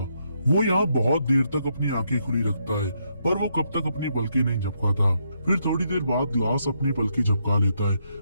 वो यहाँ बहुत देर तक अपनी आंखें खुली रखता है पर वो कब तक अपनी पलकें नहीं झपकाता। फिर थोड़ी देर बाद ग्लास अपनी पलकें झपका लेता है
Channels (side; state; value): both; inverted; correlation -0.77